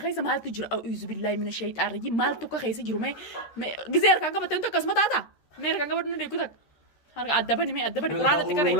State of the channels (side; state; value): right; late; 13 ms